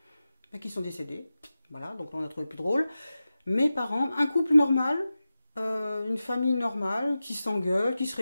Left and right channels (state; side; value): inverted; both; correlation -0.94